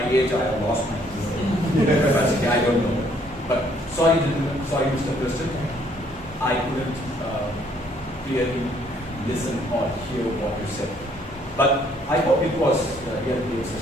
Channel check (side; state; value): both; normal; correlation 0.65